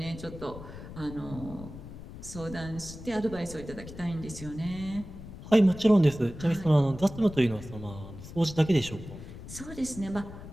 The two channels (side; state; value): left; noise; rumble, 13 dB below the sound